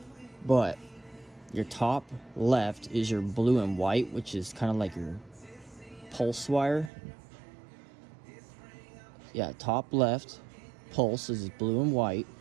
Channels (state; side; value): drops out; left; at 6.9 s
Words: But your top left is your blue and white, which is kind of like your pulse wire. Yeah, top left pulse is blue and white,